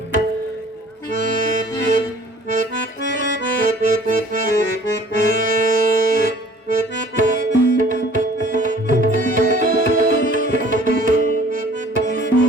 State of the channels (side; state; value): both; normal; correlation 0.52